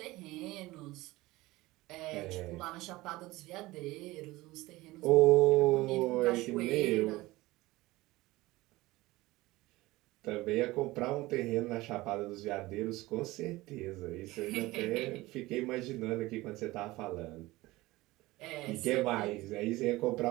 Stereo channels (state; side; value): quieter; left; 19.5 dB